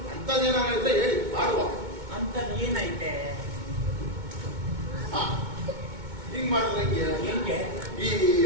ಅಂತದೇನಾರ ಇದ್ರೆ ಹೇಳಿ ಮಾಡುವ. ಅಂತ ಏನೈತೆ? ಹಿಂಗ್ ಮಾಡಿದ್ರೆ ಹೆಂಗೆ? ಈ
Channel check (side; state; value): left; late; 2.2 ms